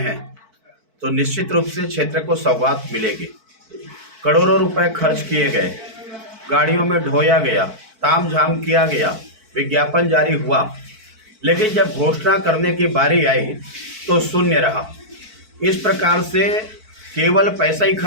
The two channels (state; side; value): late; left; 4.5 ms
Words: हैं तो निश्चित रूप से क्षेत्र को सौगात मिलेगी। करोड़ों रुपए खर्च किए गए, गाड़ियों में ढोया गया, तामझाम किया गया, विज्ञापन जारी हुआ, लेकिन जब घोषणा करने की बारी आई तो शून्य रहा। इस प्रकार से केवल पैसा ही